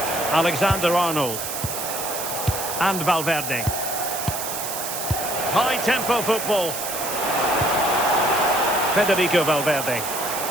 Alexander-Arnold. And Valverde. High-tempo football. Federico Valverde.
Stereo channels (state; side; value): noise; right; hiss, 5 dB below the sound